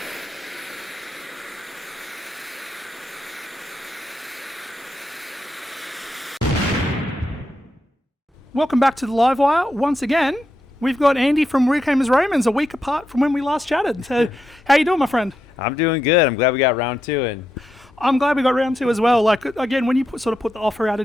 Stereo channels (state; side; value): normal; both; correlation 0.84